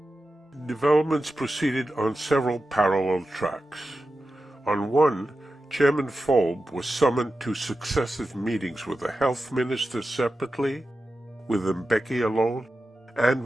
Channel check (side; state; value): both; normal; correlation 0.92